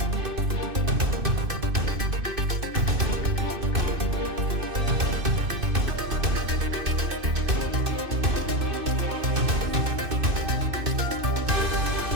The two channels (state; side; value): late; left; 2.6 ms